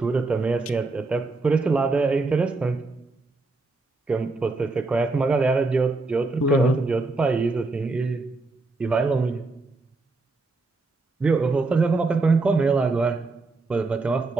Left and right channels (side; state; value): left; quieter; 3.5 dB